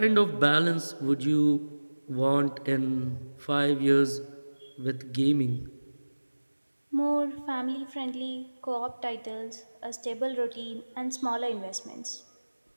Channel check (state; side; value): inverted; both; correlation -1.00